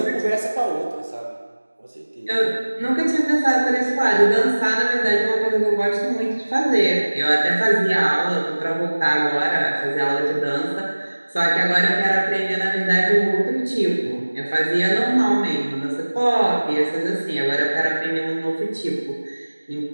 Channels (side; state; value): both; inverted; correlation -1.00